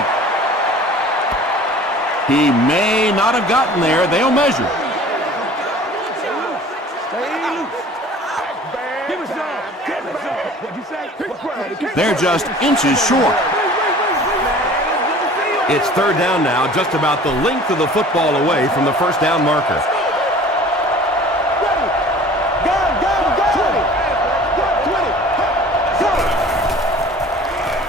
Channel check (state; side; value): normal; both; correlation 0.46